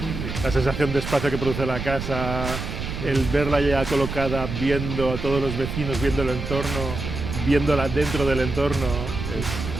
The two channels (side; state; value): right; noise; rumble, 6 dB below the sound